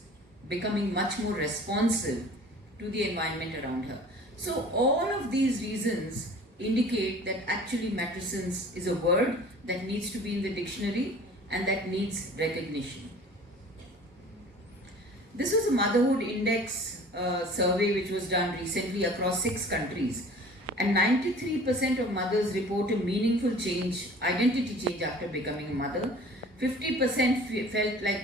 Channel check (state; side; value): normal; both; correlation 0.46